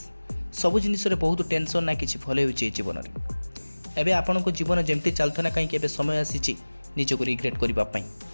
ସବୁ ଜିନିଷରେ ବହୁତ ଟେନସନ୍, ନା କିଛି ଭଲ ହେଉଛି ଏ ଜୀବନରେ। ଏବେ ଆପଣଙ୍କ ଜୀବନ ଯେମିତି ଚାଲୁଥିଲା, କାହିଁକି ଏବେ ସମୟ ଆସିଛି ନିଜକୁ ରିଗ୍ରେଟ୍ କରିବା ପାଇଁ,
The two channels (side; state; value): both; inverted; correlation -1.00